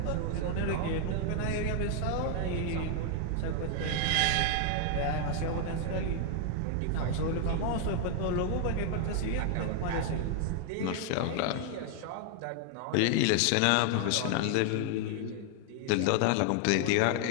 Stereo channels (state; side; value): different; both; correlation 0.00